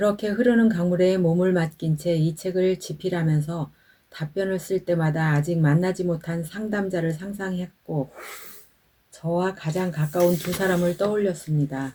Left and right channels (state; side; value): identical; both; correlation 1.00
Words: 흐르는 강물에 몸을 맡긴 채 이 책을 집필하면서 답변을 쓸 때마다 아직 만나지 못한 상담자를 상상했고 저와 가장 가까운 두 사람을